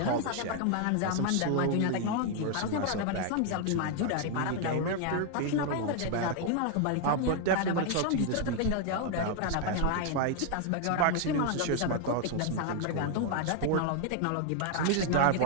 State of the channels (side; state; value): both; different; correlation 0.00